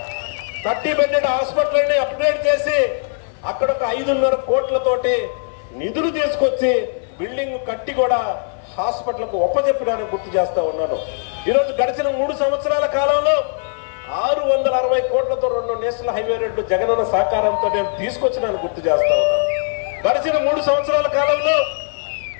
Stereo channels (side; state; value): right; silent; 59 dB below the other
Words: 30 బెడ్డెడ్ హాస్పిటల్ ని అప్గ్రేడ్ చేసి అక్కడ ఒక 5.5 కోట్లతోటి నిధులు తీసుకొచ్చి బిల్డింగ్ కట్టి కూడా హాస్పిటల్ కు ఒప్పజెప్పినానని గుర్తు చేస్తా ఉన్నాను. ఈరోజు గడిచిన 3 సంవత్సరాల కాలంలో 660 కోట్లతో 2 నేషనల్ హైవే రోడ్లు జగనన్న సహకారంతో నేను తీసుకొచ్చినాను గుర్తు చేస్తా ఉన్నాను. గడిచిన 3 సంవత్సరాల కాలంలో